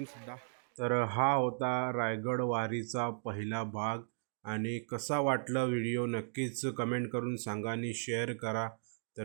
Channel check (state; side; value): silent; left; digital silence